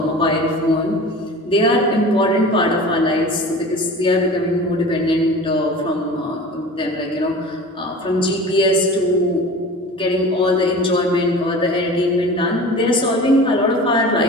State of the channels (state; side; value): normal; both; correlation 0.37